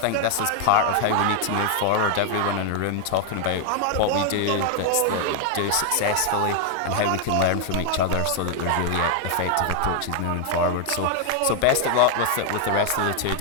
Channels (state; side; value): different; both; correlation 0.00